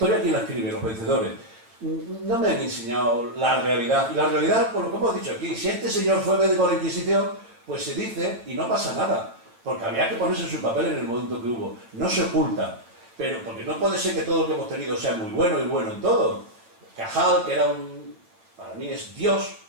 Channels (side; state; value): left; late; 8.8 ms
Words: ¿quién la escribe? Los vencedores. No me han enseñado la realidad. Y la realidad, por lo que hemos dicho aquí, si este señor fue médico de la Inquisición, pues se dice y no pasa nada. Porque había que ponerse en su papel en el momento que hubo. No se oculta. Pero porque no puede ser que todo lo que hemos tenido sea muy bueno y bueno en todo. Cajal, que era para mí es Dios,